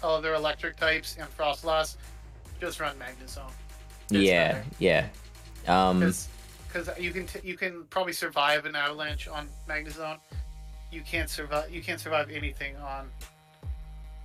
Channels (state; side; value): identical; both; correlation 1.00